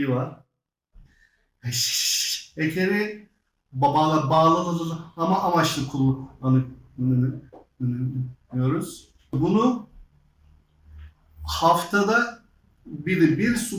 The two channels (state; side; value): identical; both; correlation 1.00